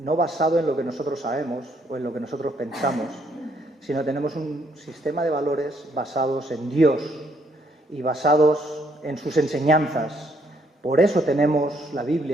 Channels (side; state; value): both; normal; correlation 0.70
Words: basado en lo que nosotros sabemos o en lo que nosotros pensamos, sino tenemos un sistema de valores basados en Dios y basados en sus enseñanzas. Por eso tenemos la